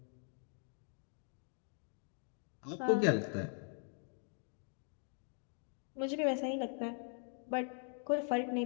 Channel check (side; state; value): right; silent; 50 dB below the other